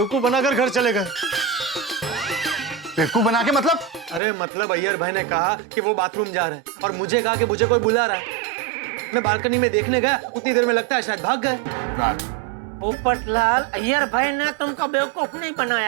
बनाकर घर चले गए। बेवकूफ बना के मतलब? अरे मतलब अय्यर भाई ने कहा कि वो बाथरूम जा रहे हैं और मुझे कहा कि मुझे कोई बुला रहा है। मैं बालकनी में देखने गया, उतनी देर में लगता है शायद भाग गए। पोपटलाल, अय्यर भाई ने तुमको बेवकूफ नहीं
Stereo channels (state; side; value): drops out; left; at 4.2 s